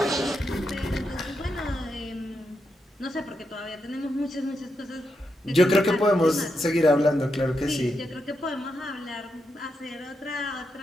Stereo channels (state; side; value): normal; both; correlation 0.84